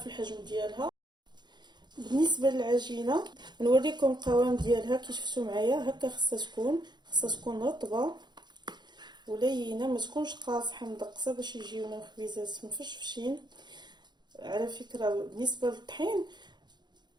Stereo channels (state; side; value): late; left; 0.21 ms